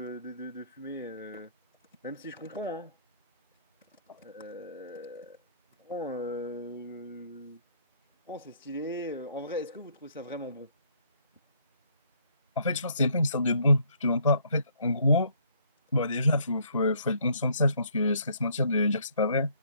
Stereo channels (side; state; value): both; inverted; correlation -0.65